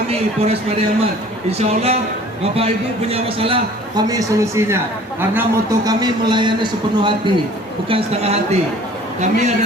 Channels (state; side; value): normal; both; correlation 0.50